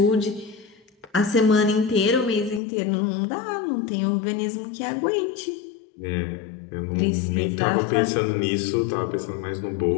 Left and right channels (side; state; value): right; drops out; at 2.6 s